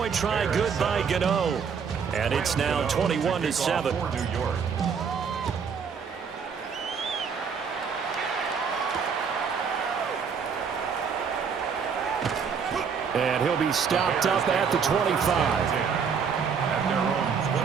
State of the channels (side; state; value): left; quieter; 6.3 dB